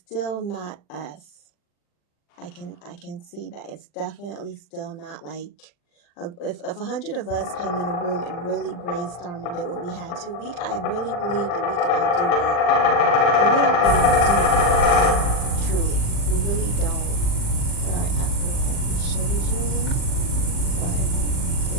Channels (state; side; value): late; right; 40 ms